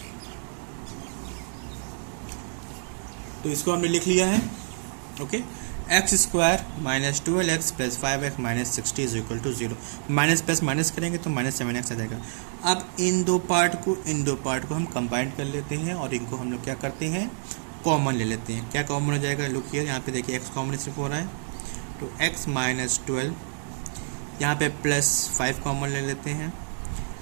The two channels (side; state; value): left; silent; digital silence